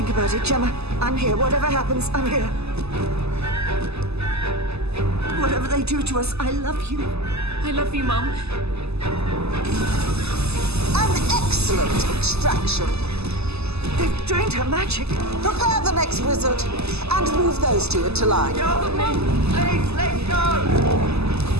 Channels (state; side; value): late; left; 0.79 ms